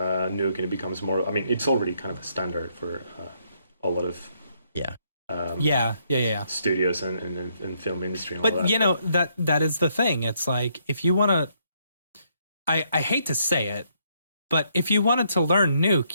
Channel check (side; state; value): both; inverted; correlation -0.72